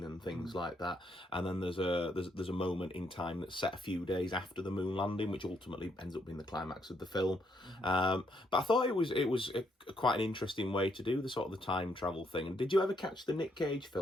and things like that. And then there's a moment in time that's set a few days after the moon landing, which ultimately ends up being the climax of the film. But I thought it was quite an interesting way to do the sort of the time travel thing. And did you ever catch the Nick Cage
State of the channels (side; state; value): both; normal; correlation 0.74